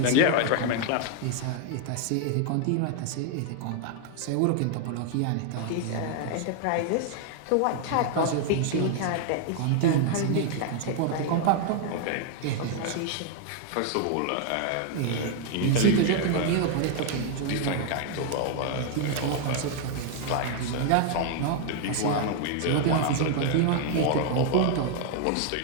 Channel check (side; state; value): both; different; correlation 0.00